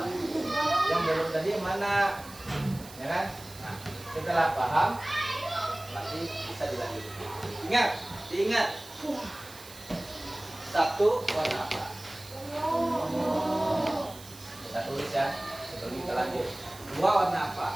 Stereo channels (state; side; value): noise; right; hiss, 18 dB below the sound